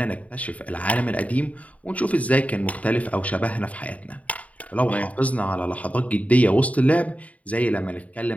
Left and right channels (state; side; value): late; right; 0.069 ms